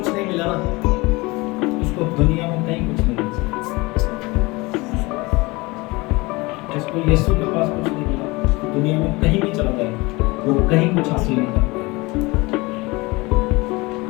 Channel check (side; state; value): right; quieter; 23.7 dB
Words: नहीं मिला ना, उसको दुनिया में कहीं कुछ नहीं मिल सकता। जिसको यीशु के पास कुछ नहीं मिला, दुनिया में कहीं भी चला जाए वो कहीं कुछ हासिल नहीं कर पाएगा।